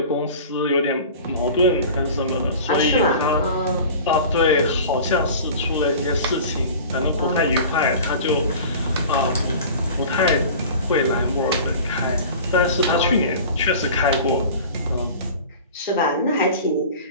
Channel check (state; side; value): inverted; both; correlation -0.39